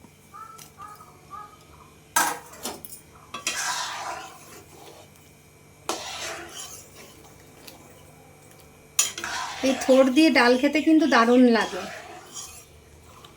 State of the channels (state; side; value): identical; both; correlation 1.00